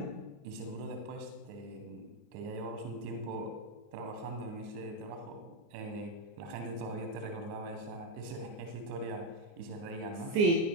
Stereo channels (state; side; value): late; left; 29 ms